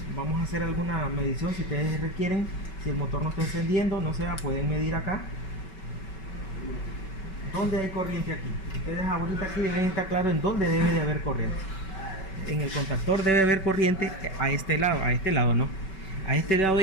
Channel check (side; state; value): right; late; 5.2 ms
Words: vamos a hacer alguna medición si ustedes requieren. Si el motor no está encendiendo, no sé, pueden medir acá. ¿Dónde hay corriente aquí? Ustedes ahorita aquí deben estar claros en dónde debe de haber corriente. En el contactor debe haber corriente a este lado no. A este lado